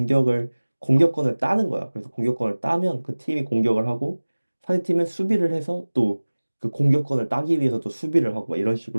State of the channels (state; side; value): inverted; both; correlation -1.00